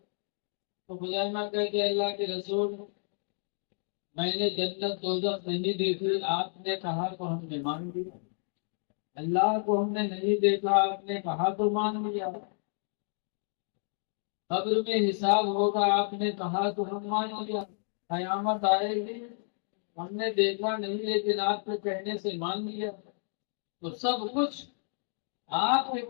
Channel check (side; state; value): right; silent; digital silence